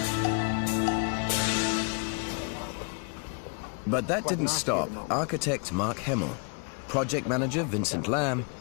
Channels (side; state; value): right; quieter; 38.7 dB